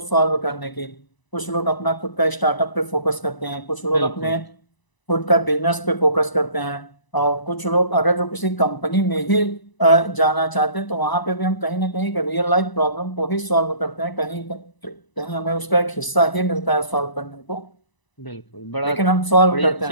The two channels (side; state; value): right; late; 1.0 ms